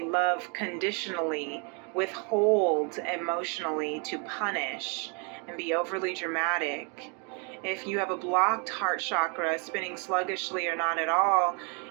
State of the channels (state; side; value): quieter; left; 36.1 dB